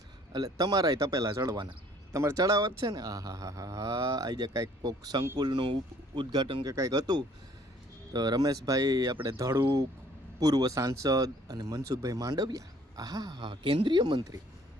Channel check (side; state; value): both; normal; correlation 0.58